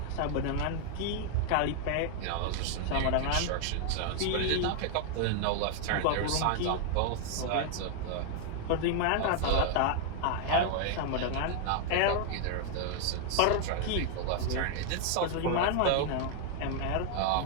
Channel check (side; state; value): both; different; correlation 0.00